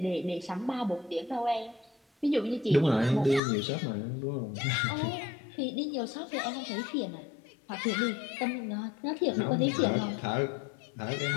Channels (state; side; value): drops out; right; at 3.4 s